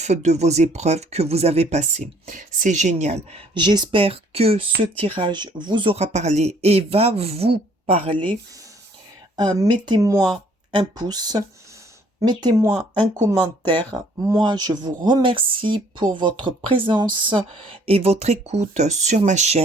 de vos épreuves que vous avez passées. C'est génial. J'espère que ce tirage vous aura parlé et va vous parler. Mettez-moi un pouce, mettez-moi un commentaire. Moi, je vous remercie pour votre présence et votre écoute sur ma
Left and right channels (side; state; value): both; normal; correlation 0.61